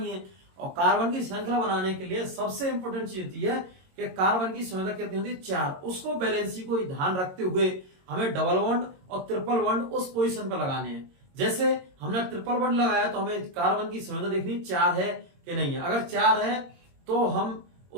है। और कार्बन की श्रृंखला बनाने के लिए सबसे इंपॉर्टेंट चीज होती है कि कार्बन की संयोजकता कितनी होती है, 4। उसको बैलेंसी को ध्यान रखते हुए हमें डबल बॉन्ड और ट्रिपल बॉन्ड उस पोजीशन पर लगाने हैं। जैसे हमने ट्रिपल बॉन्ड लगाया तो हमें कार्बन की संयोजकता देखनी 4 है कि नहीं है। अगर 4 है तो हम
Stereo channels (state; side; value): late; left; 22 ms